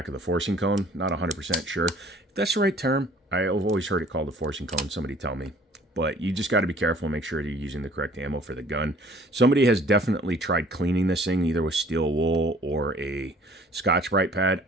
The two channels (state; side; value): normal; both; correlation 0.53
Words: of the forcing cone. Not 100% sure. If that's the right term, I've always heard it called the forcing cone. Somebody tell me. But you just got to be careful and make sure you're using the correct ammo for the gun. Somebody has definitely tried cleaning this thing, either with steel wool or a Scotch-Brite pad.